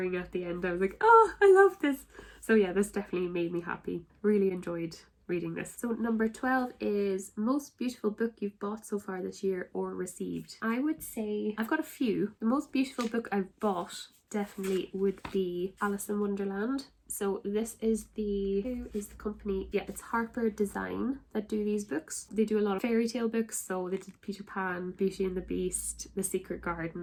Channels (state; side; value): identical; both; correlation 1.00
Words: at the end. I was like, oh, I love this. So yeah, this definitely made me happy. Really enjoyed reading this. So number 12 is most beautiful book you've bought so far this year or received. I would say I've got a few. The most beautiful book I've bought definitely would be Alice in Wonderland. So this is who is the company? Yeah, it's Harper Design that do these books. They do a lot of fairy tale books, so they did Peter Pan, Beauty and the Beast, The Secret